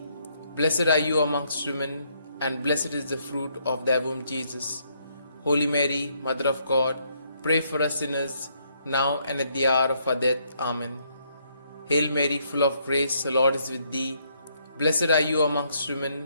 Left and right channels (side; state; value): both; inverted; correlation -0.72